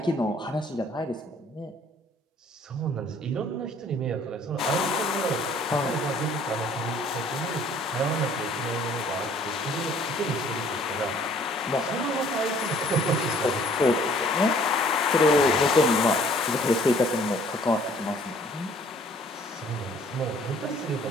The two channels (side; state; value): both; normal; correlation 0.57